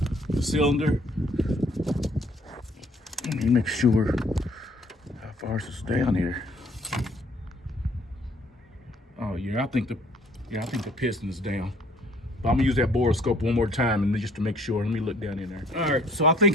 the cylinder. Let me make sure how far is this down here. Oh yeah, I think the piston is down. But I'm gonna use that borescope one more time and just to make sure. Let me look down in there. All right, so I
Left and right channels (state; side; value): normal; both; correlation 0.60